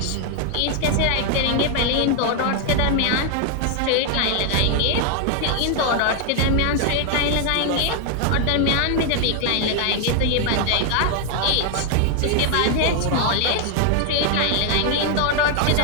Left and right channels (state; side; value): different; both; correlation 0.00